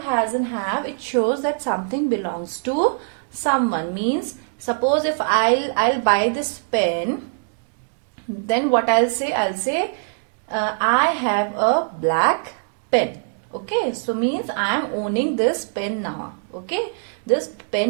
has and have, it shows that something belongs to someone. Means, suppose if I'll buy this pen, then what I'll say? I'll say I have a black pen. Okay, so means I am owning this pen now. Okay, this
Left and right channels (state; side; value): silent; left; digital silence